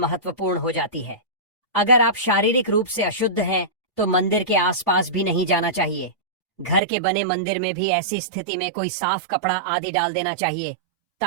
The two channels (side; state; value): left; drops out; at 6.8 s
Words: हो जाती है। अगर आप शारीरिक रूप से अशुद्ध हैं तो मंदिर के आसपास भी नहीं जाना चाहिए। घर के बने मंदिर में भी ऐसी स्थिति में कोई साफ कपड़ा आदि डाल देना चाहिए